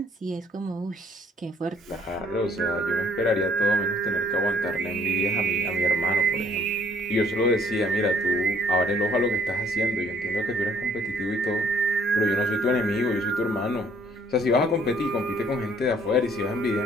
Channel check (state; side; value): normal; both; correlation 0.61